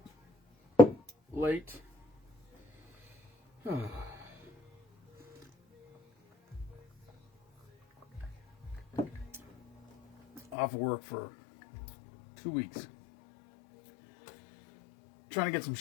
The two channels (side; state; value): right; drops out; at 10.6 s